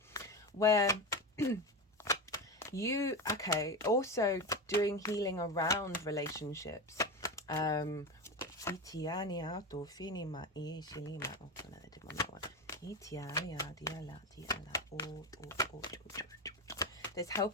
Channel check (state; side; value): normal; both; correlation 0.19